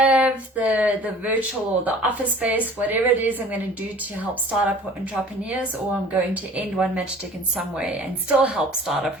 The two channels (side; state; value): both; normal; correlation 0.47